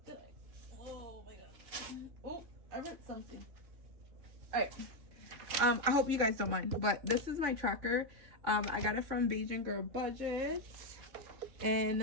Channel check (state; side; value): late; left; 3.5 ms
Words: Oh my God. Oh, I wrote something. All right. I hope you guys don't mind, but this is my tracker. I got it from Beijing Girl Budgets,